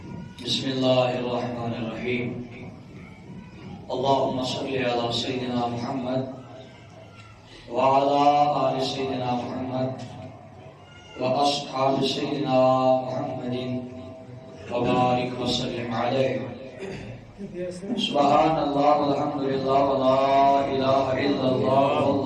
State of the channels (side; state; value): both; identical; correlation 1.00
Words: بسم الله الرحمن الرحيم. اللهم صل على سيدنا محمد وعلى آل سيدنا محمد وأصحاب سيدنا محمد وبارك وسلم عليه. سبحان الله والحمد لله ولا إله إلا الله